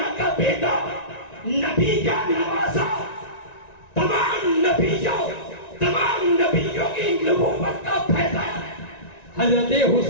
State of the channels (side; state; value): right; late; 1.9 ms